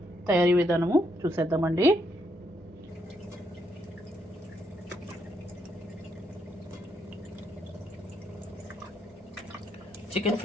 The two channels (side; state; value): both; normal; correlation 0.76